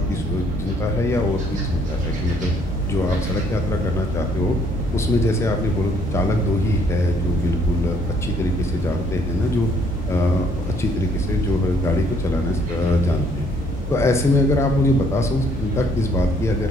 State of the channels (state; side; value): normal; both; correlation 0.65